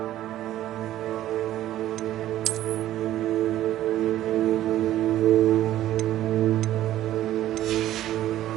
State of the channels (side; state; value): left; quieter; 13.4 dB